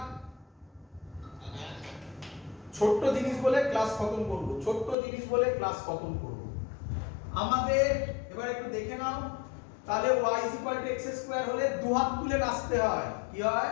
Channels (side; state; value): right; drops out; at 5.0 s